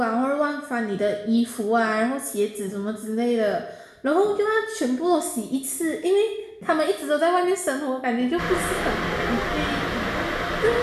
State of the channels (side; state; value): both; identical; correlation 1.00